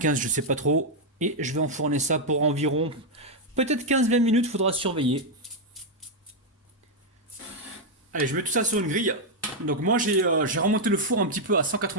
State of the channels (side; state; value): both; normal; correlation -0.01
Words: je sais pas trop. Et je vais enfourner ça pour environ peut-être 15-20 minutes, faudra surveiller. Allez, je mets tout ça sur une grille. Donc moi j'ai remonté le four un petit peu à